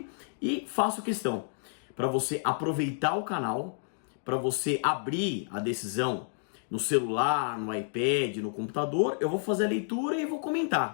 e faço questão para você aproveitar o canal, para você abrir a decisão no celular, no iPad, no computador. Eu vou fazer a leitura e vou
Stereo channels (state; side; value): silent; right; digital silence